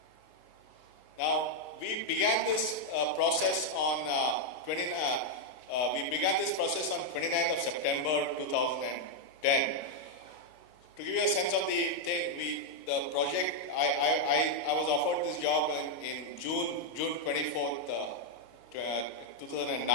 Now, we began this process on 29th of September 2010. To give you a sense of the thing, the project, I was offered this job in June 24th, 2009.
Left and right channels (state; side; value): late; right; 32 ms